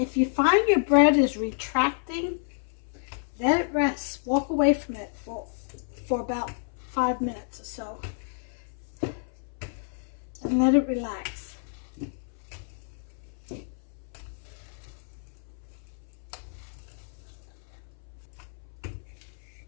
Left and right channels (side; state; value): right; silent; 58 dB below the other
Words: you find your bread is retracting, let it rest. Walk away from it for about 5 minutes or so. And let it relax.